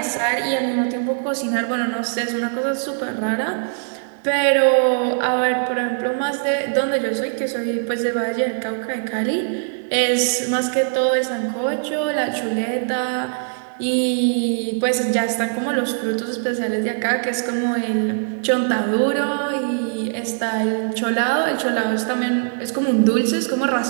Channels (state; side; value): silent; left; digital silence